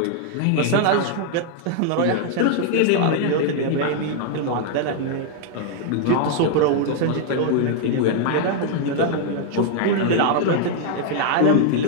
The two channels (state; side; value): different; both; correlation 0.00